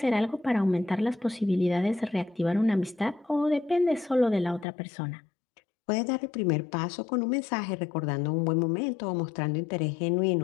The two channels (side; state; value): right; drops out; at 4.7 s